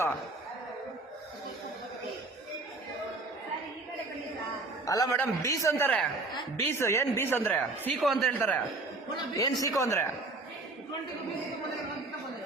ಅಲ್ಲ ಮೇಡಮ್, ಬೀಸ್ ಅಂತಾರೆ. ಬೀಸ್ ಏನ್ ಬೀಸ್ ಅಂದ್ರೆ? ಸೀಕೋ ಅಂತ ಹೇಳ್ತಾರೆ. ಏನ್ ಸೀಕೋ ಅಂದ್ರೆ?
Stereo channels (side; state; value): left; quieter; 3.3 dB